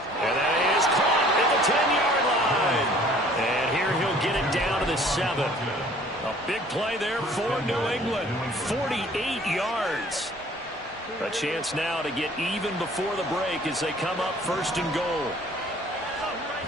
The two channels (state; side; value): normal; both; correlation 0.54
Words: And that is caught at the 10-yard line. And here he'll get it down to the 7. A big play there for New England. 48 yards. A chance now to get even before the break as they come up first and goal.